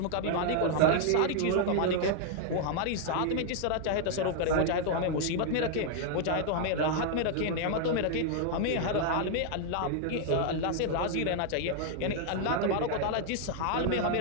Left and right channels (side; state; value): both; different; correlation 0.00